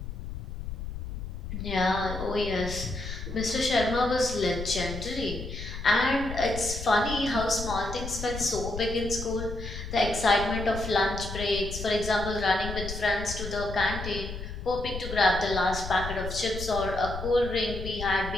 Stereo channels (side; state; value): left; noise; rumble, 8 dB below the sound